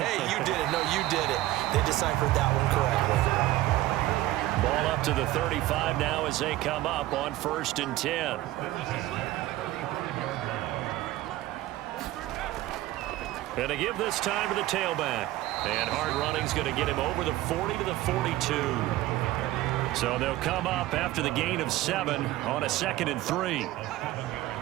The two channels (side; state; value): left; quieter; 16.1 dB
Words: you did it. No, you did it. They deciphered that one correctly. Ball up to the 35 now as they come up on 1st and 10. And to give this time to the tailback. And hard running's going to get him over the 40 to the 42. So they'll come up after the gain of 7 on a 2nd and 3.